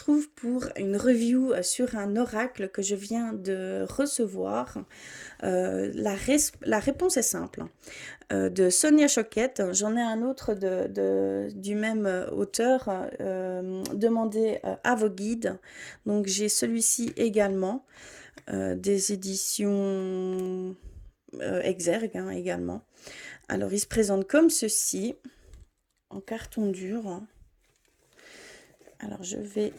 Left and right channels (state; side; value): identical; both; correlation 1.00